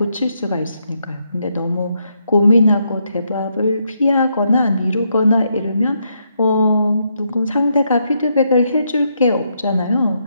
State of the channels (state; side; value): inverted; both; correlation -0.78